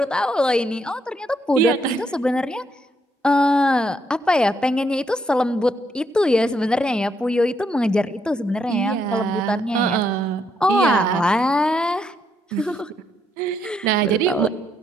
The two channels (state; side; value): normal; both; correlation 0.75